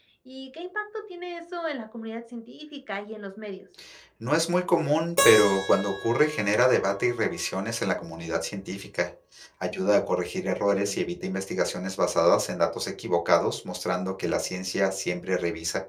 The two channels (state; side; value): identical; both; correlation 1.00